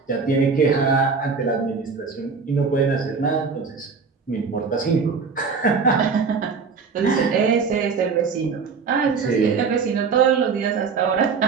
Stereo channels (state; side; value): quieter; left; 5.2 dB